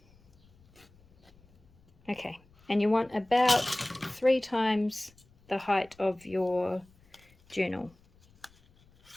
Okay, and you want about 3 times the height of your journal.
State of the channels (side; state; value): left; noise; rumble, 30 dB below the sound